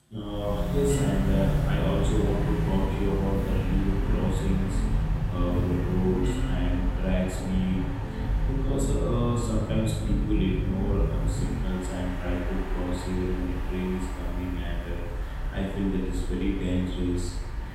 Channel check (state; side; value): identical; both; correlation 1.00